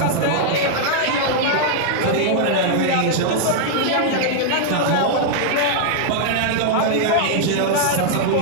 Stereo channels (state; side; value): different; both; correlation -0.01